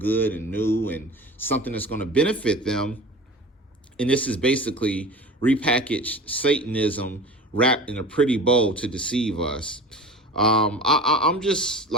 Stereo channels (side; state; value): both; normal; correlation 0.36